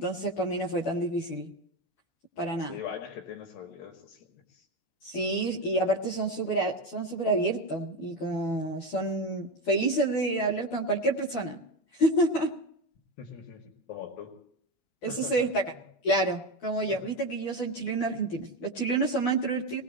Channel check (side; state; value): right; late; 12 ms